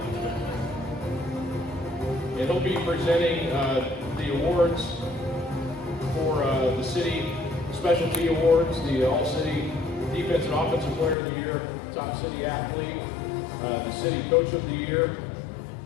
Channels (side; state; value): right; drops out; at 11.2 s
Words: And he'll be presenting the awards for the city specialty awards, the All-City Defense and Offensive Player of the Year, Top City Athlete, the City Coach of the Year,